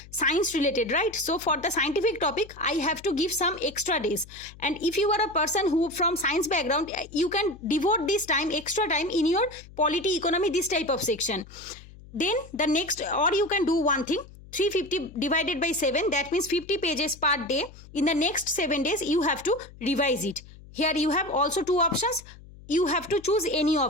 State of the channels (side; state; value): left; noise; hum, 20 dB below the sound